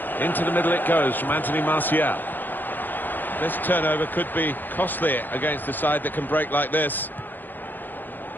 Into the middle it goes from Anthony Martial. This turnover could be costly against a side that can break like this.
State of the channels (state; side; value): late; right; 0.088 ms